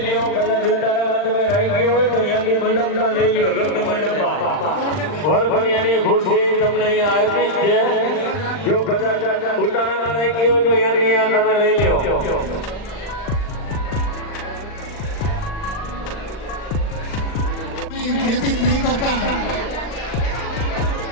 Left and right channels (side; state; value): right; late; 39 ms